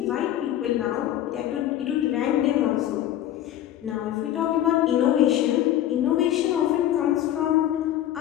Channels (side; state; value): right; quieter; 12.2 dB